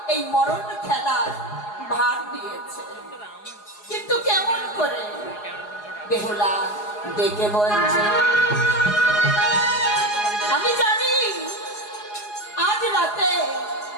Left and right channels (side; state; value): right; late; 4.8 ms